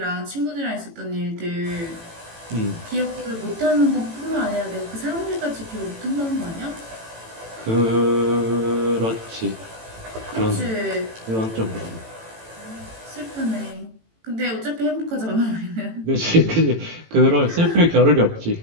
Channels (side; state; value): left; late; 18 ms